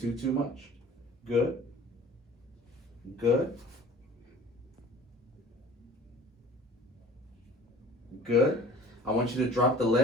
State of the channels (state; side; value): normal; both; correlation 0.46